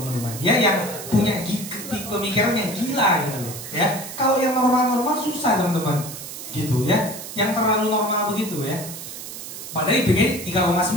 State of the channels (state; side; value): noise; right; hiss, 10 dB below the sound